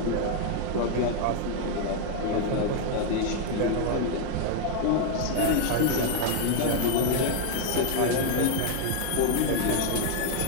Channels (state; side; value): different; both; correlation 0.00